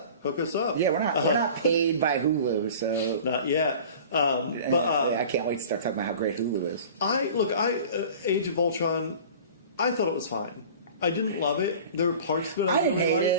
Hook us up. Yeah, we're not paid by Hulu, so not yet. I can't wait to start talking about how great Hulu is. Age of Ultron, I thought it was fine. I didn't love it. There were parts of it I didn't hate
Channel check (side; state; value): both; inverted; correlation -0.42